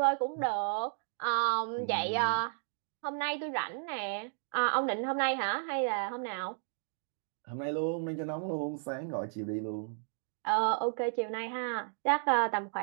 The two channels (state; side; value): silent; left; digital silence